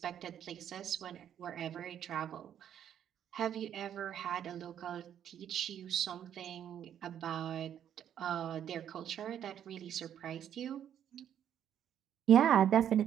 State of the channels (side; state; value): left; quieter; 9.8 dB